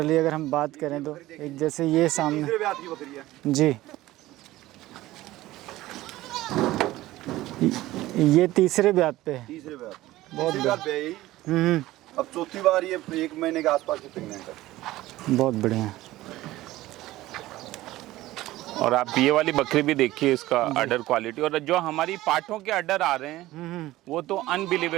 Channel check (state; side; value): quieter; left; 16.7 dB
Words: अगर हम बात करें तो एक जैसे ये सामने तीसरे ब्याह की बकरी है जी, ये तीसरे ब्याह पे है। तीसरे ब्याह बहुत तीसरी बार पे आई। हम्म, अब चौथी बार ये 1 महीने के आसपास की प्रेगनेंट है। बहुत बढ़िया। और आप ये वाली बकरी भी देखिए, इसका अडर क्वालिटी, और जो हमारी पाठों के अडर आ रहे हैं वो तो